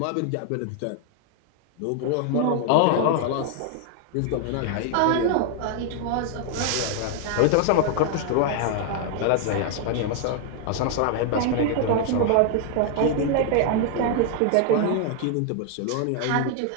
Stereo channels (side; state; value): both; different; correlation 0.00